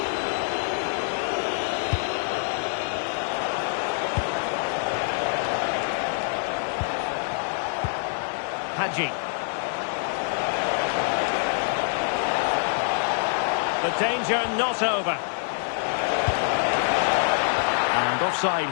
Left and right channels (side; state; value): right; silent; digital silence